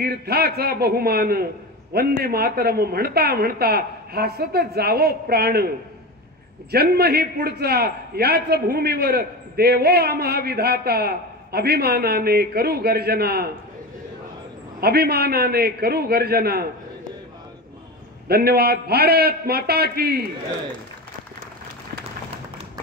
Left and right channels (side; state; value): both; normal; correlation 0.24